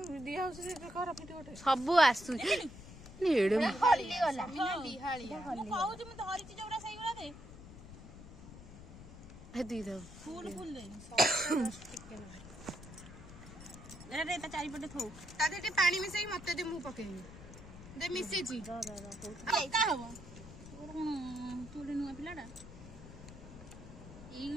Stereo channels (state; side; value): noise; left; rumble, 15 dB below the sound